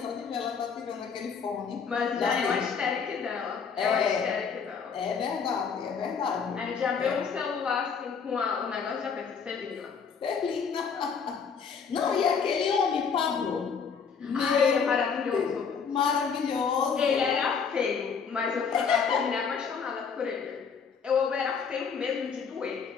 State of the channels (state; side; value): quieter; right; 6.1 dB